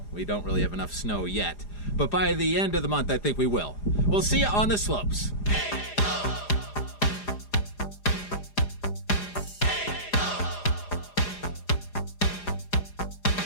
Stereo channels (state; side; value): late; right; 4.9 ms